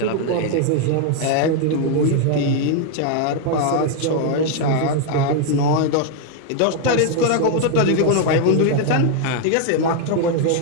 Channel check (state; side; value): different; both; correlation 0.00